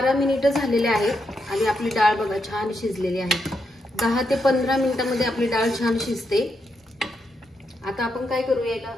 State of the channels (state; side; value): normal; both; correlation 0.82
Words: मिनिटं झालेले आहेत आणि आपली डाळ बघा छान शिजलेली आहे। 10 ते 15 मिनिटांमध्ये आपली डाळ छान शिजते। आता आपण काय करूया, याला